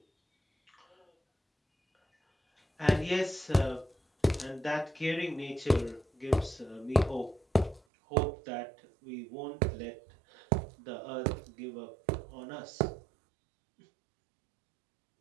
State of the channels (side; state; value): left; drops out; at 7.8 s